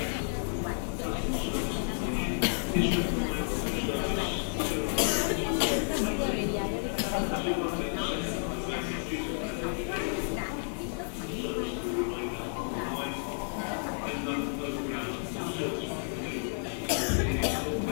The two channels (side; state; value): right; silent; 56 dB below the other